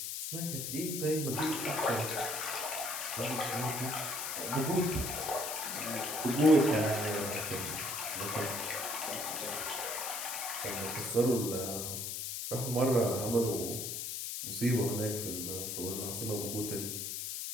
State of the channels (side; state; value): left; noise; hiss, 4 dB below the sound